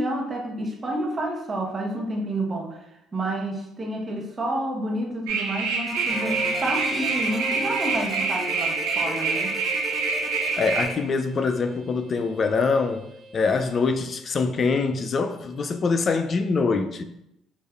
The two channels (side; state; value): both; normal; correlation 0.68